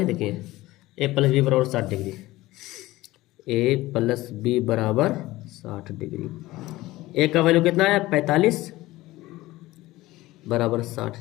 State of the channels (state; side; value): quieter; right; 18.1 dB